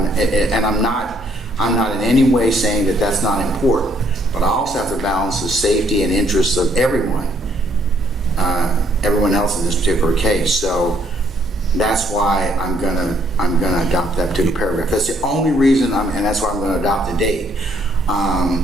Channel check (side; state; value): both; normal; correlation 0.68